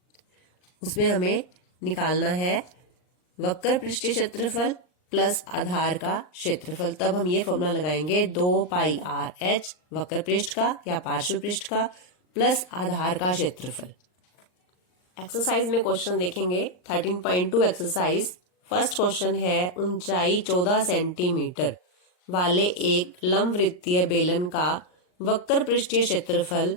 उसमें हमें निकालना है वक्र पृष्ठीय क्षेत्रफल प्लस आधार का क्षेत्रफल। तब हम ये फॉर्मूला लगाएंगे 2 पाई आर एच वक्र पृष्ठ का या पार्श्व पृष्ठ का प्लस आधार का क्षेत्रफल। एक्सरसाइज में क्वेश्चन देखेंगे 13.2 एक्सरसाइज। फर्स्ट क्वेश्चन है ऊंचाई 14 सेंटीमीटर वाले एक लंबवृत्तीय बेलन का वक्र पृष्ठीय क्षेत्रफल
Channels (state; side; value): late; right; 39 ms